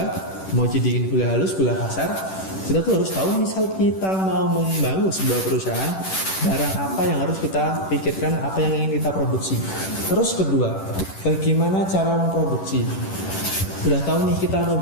mau dijadikan gula halus, gula kasar. Kita tuh harus tahu misal kita mau membangun sebuah perusahaan, barang apa yang harus kita pikirkan, apa yang ingin kita produksi. Terus kedua, bagaimana cara memproduksi. Udah tahu nih kita mau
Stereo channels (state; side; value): late; right; 11 ms